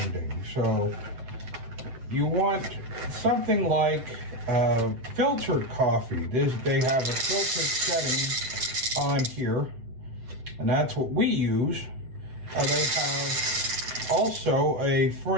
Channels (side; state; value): left; late; 7.9 ms